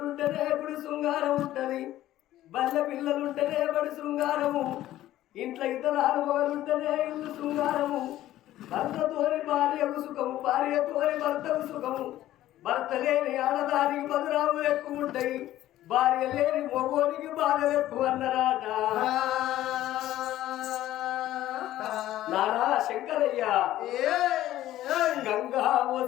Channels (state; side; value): quieter; right; 14.1 dB